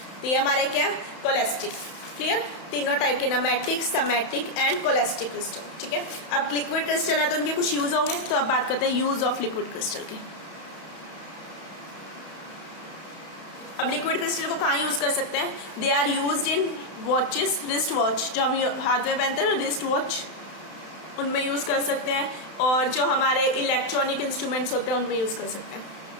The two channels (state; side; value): late; right; 31 ms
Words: तो ये हमारे क्या है, कोलेस्ट्रिक। क्लियर, तीनों टाइप के, नमेटिक, सिमेट्रिक एंड कोलेस्ट्रिक क्रिस्टल। ठीक है, अब लिक्विड क्रिस्टल है तो उनके कुछ यूज होंगे। तो अब बात करते हैं यूज ऑफ लिक्विड क्रिस्टल के। अब लिक्विड क्रिस्टल को कहाँ यूज कर सकते हैं, they are used in watches, wrist watch, जो हम हाथ में पहनते हैं, रिस्ट वॉच, उनमें यूज कर सकते हैं। और जो हमारे इलेक्ट्रॉनिक इंस्ट्रूमेंट्स होते हैं उनमें यूज कर सकते हैं।